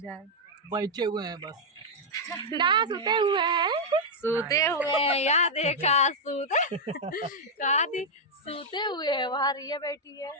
बैठे हुए हैं बस ना सोते हुए हैं यहाँ देखा सूते हुए हैं। वहाँ रिया बैठी है,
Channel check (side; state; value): both; normal; correlation -0.03